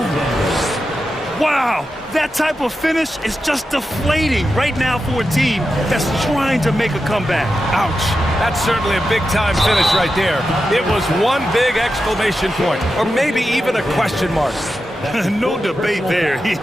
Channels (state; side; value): normal; both; correlation 0.90